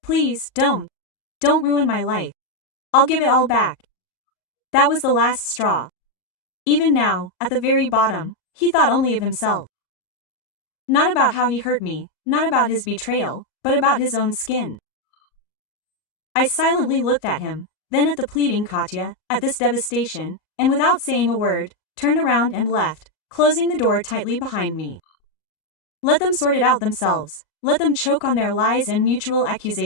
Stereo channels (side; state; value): right; late; 38 ms